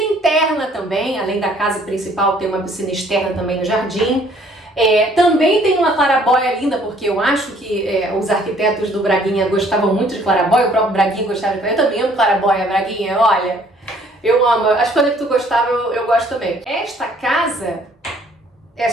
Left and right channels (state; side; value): normal; both; correlation 0.60